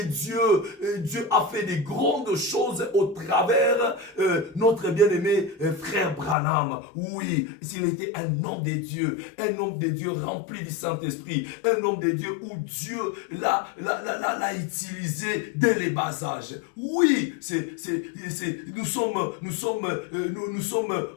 Dieu a fait des grandes choses au travers notre bien-aimé frère Branham. Oui, s'il était un homme de Dieu rempli du Saint-Esprit, un homme de Dieu où Dieu l'a utilisé dès les bas âges. Oui, nous sommes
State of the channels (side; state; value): right; drops out; at 6.4 s